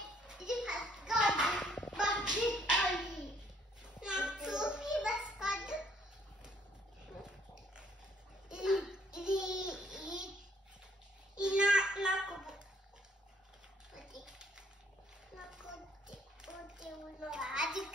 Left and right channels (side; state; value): both; normal; correlation 0.65